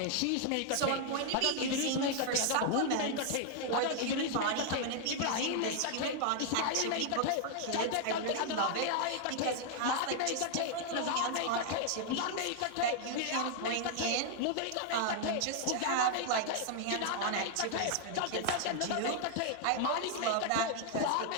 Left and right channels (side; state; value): both; different; correlation 0.00